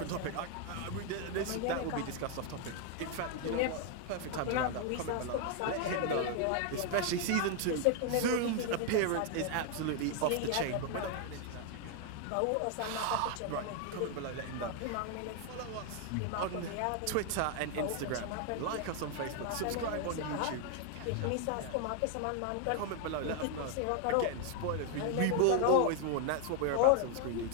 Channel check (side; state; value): both; different; correlation 0.00